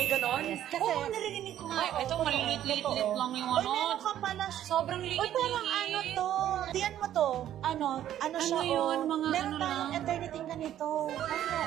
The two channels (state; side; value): quieter; left; 11.6 dB